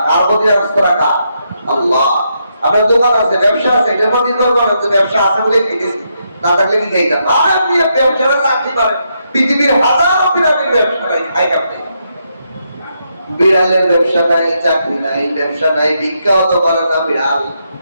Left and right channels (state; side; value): inverted; both; correlation -0.80